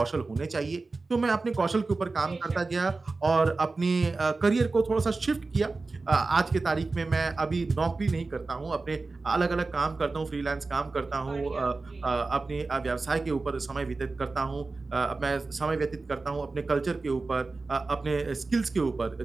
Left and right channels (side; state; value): left; quieter; 3.7 dB